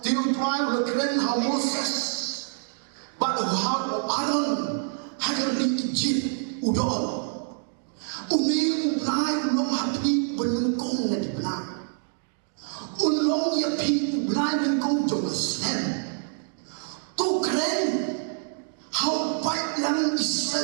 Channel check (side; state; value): left; silent; 61 dB below the other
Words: tiu tuai berkeren how Moses, but how Aaron agar diijib udol. Umi ulai ulong hapi benengkong nanti benar. Ulong ya pi ulai benengkong jauh sen. Tu keren how baik yang